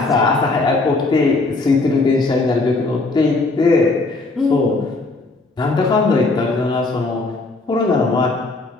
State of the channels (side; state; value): right; quieter; 3.4 dB